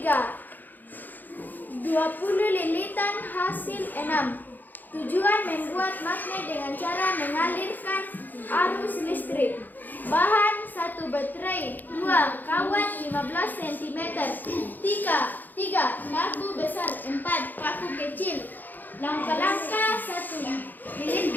20 lilitan hasil 6. Tujuan membuat magnet dengan cara mengalirkan arus listrik. Bahan 1 baterai, 2 kawat 15 cm, 3 paku besar, 4 paku kecil. Langkah-langkah 1.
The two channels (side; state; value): right; late; 0.086 ms